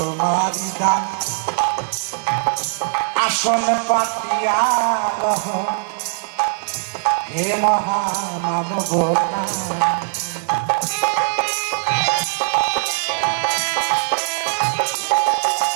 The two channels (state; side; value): silent; left; 66 dB below the other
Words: দান আসন পাতিয়া রহ হে মহামানব